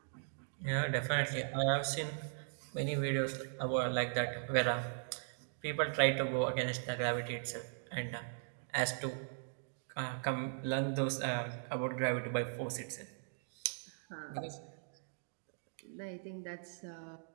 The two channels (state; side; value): silent; left; digital silence